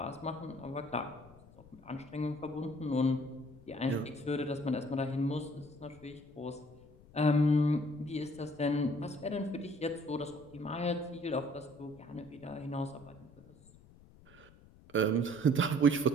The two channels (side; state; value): left; noise; rumble, 23 dB below the sound